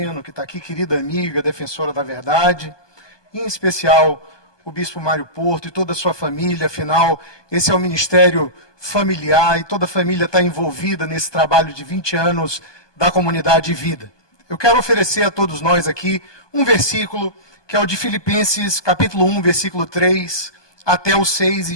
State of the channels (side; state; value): right; late; 1.2 ms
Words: que está aqui, querida amiga, defensora da verdade, e em especial o bispo Mário Porto e toda a sua família. Afinal, esse é o ministério familiar e toda a família está envolvida nesse trabalho de 20 anos da comunidade Vida. Eu quero oferecer a todos nós aqui um versículo, que é o de Filipenses, capítulo 1, versículo 3 até o 6,